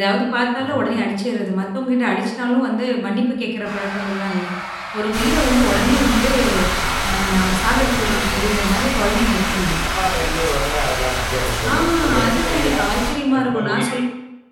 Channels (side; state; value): both; identical; correlation 1.00